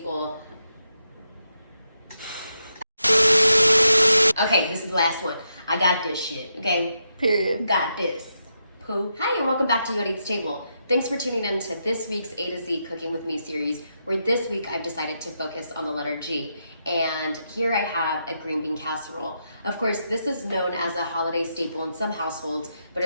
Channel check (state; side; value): inverted; both; correlation -0.83